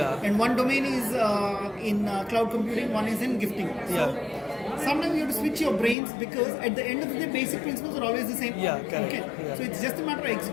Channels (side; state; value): right; drops out; at 6.0 s